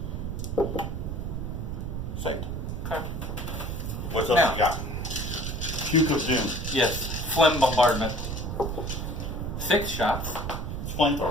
Saved. Okay. What else Now. you got? Puke of Doom. Yes. Phlegm bombardment. 6 shots. It's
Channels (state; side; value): noise; right; rumble, 4 dB below the sound